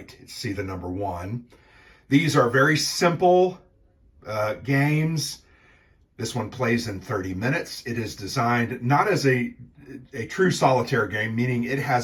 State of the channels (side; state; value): both; identical; correlation 1.00